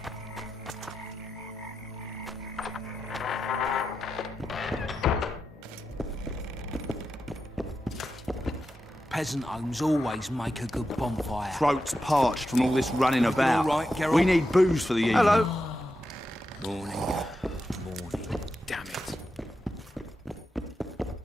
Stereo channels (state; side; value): normal; both; correlation 0.88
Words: Peasant homes always make a good bonfire. Throats parched from all this running about. all right, Geralt? We need booze for the evening. Hello. Morning. Morning. Damn it.